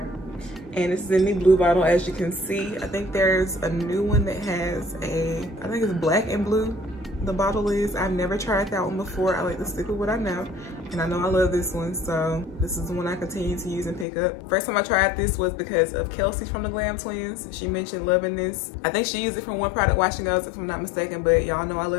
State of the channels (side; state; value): right; drops out; at 14.1 s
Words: and this is in the blue bottle. As you can see, I think there's a new one that has a, I think it's black and blue, the bottle is. I've never tried that one before. I like to stick with what I know, and I know I love this one, so this is the one I continue to use and pick up. First time I tried this was because of Kelsey from the Glam Twins. She mentioned loving this. I think she used it from One Product Wash and Goes, if I'm not mistaken, but y'all know I